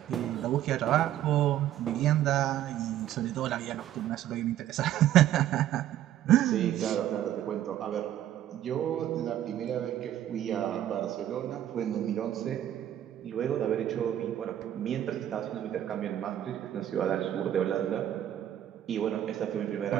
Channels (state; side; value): quieter; left; 11.9 dB